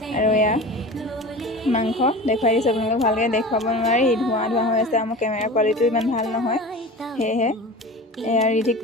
আৰু মাংস দেখুৱাই দিছোঁ আপোনালোকক, ভালকৈ দেখুৱাব নোৱাৰি, ধোঁৱা হৈ আছে। মোৰ কেমেৰা কোৱালিটিও ইমান ভাল নহয়, সেয়েহে ৰিধিক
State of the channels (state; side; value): normal; both; correlation 0.34